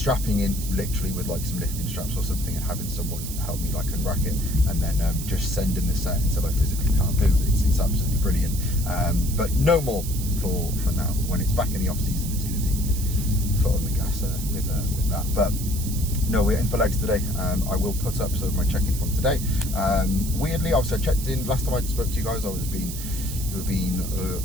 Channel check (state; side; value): noise; right; hiss, 9 dB below the sound